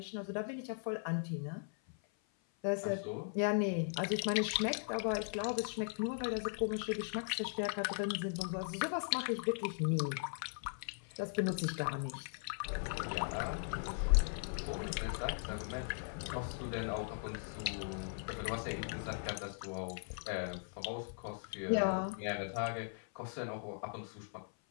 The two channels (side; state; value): right; silent; 52 dB below the other